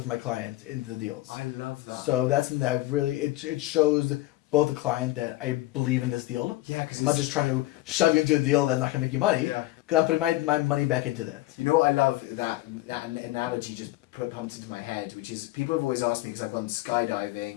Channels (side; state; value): right; quieter; 17.6 dB